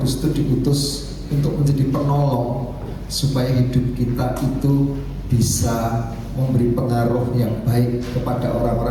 itu diutus untuk menjadi penolong, supaya hidup kita itu bisa memberi pengaruh yang baik kepada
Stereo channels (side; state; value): both; identical; correlation 1.00